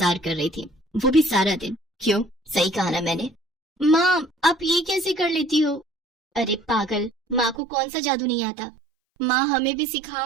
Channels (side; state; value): left; drops out; at 7.6 s